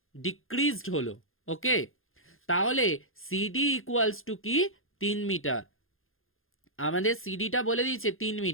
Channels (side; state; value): right; late; 0.60 ms